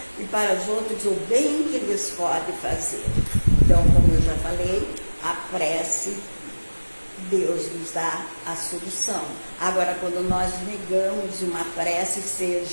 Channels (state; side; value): inverted; both; correlation -1.00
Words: e para os outros o bem que lhes pode fazer. Então, como eu já falei, a prece, Deus nos dá a solução. Agora, quando nós negamos uma prece,